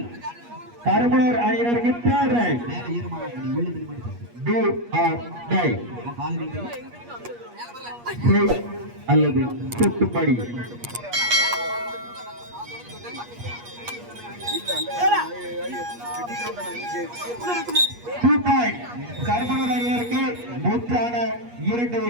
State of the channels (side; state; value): left; late; 8.4 ms